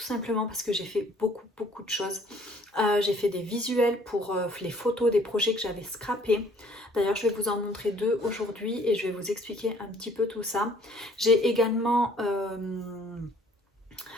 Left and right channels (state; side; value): normal; both; correlation 0.59